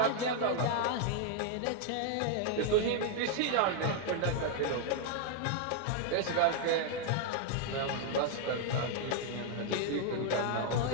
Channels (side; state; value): both; different; correlation 0.00